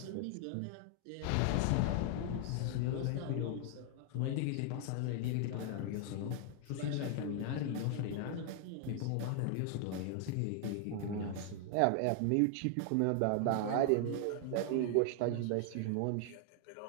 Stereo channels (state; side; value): different; both; correlation 0.00